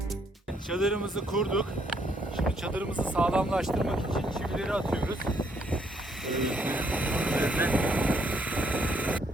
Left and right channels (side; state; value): both; normal; correlation 0.71